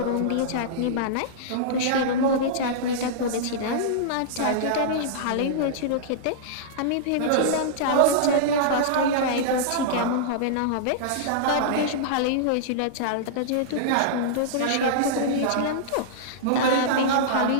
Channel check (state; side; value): different; both; correlation -0.02